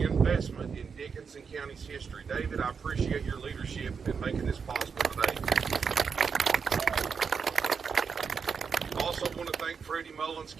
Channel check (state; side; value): quieter; left; 6.0 dB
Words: in Dickinson County's history. David, I appreciate your leadership in making this possible today. I also want to thank Freddie Mullins,